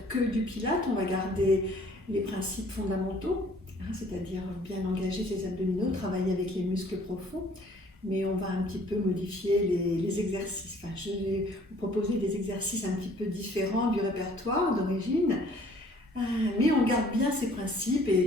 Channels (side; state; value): both; normal; correlation 0.56